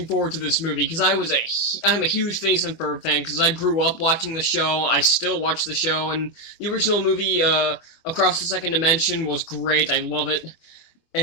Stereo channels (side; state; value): right; late; 24 ms